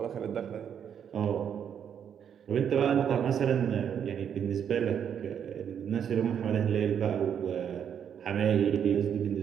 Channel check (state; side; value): quieter; left; 8.4 dB